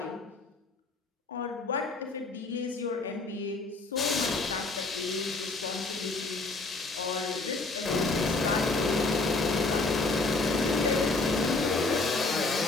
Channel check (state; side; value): quieter; right; 3.5 dB